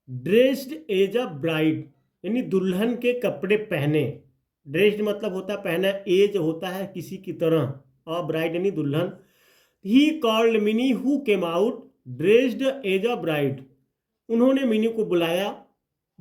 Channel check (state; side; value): identical; both; correlation 1.00